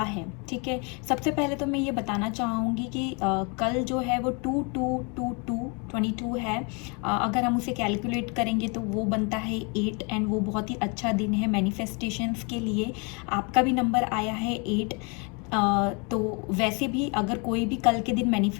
है, ठीक है, सबसे पहले तो मैं ये बताना चाहूँगी कि कल जो है वो 22 है। अगर हम उसे कैलकुलेट करेंगे तो वो बनता है 8, एंड वो बहुत ही अच्छा दिन है मैनिफेस्टेशंस के लिए। आपका भी नंबर आया है 8। तो वैसे भी अगर कोई भी कल के दिन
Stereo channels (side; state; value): right; quieter; 33.0 dB